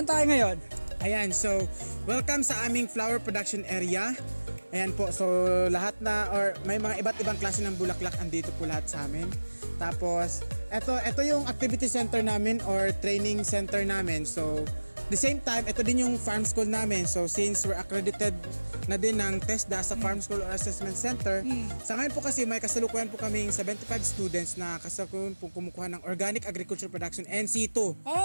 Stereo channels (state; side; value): inverted; both; correlation -1.00